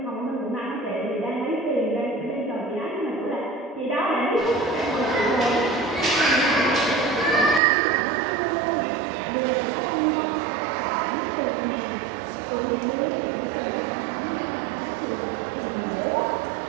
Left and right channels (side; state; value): left; drops out; at 7.6 s